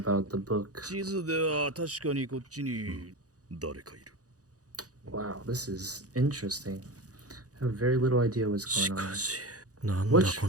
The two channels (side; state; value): left; late; 0.67 ms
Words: the book. 地図では確かにこっちに誰かいる Wow, this is interesting. I have very little idea what's し going か on. し、なんだ What こ